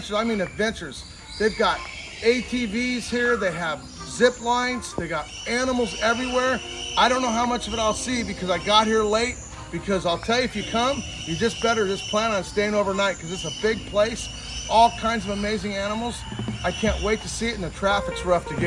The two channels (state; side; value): identical; both; correlation 1.00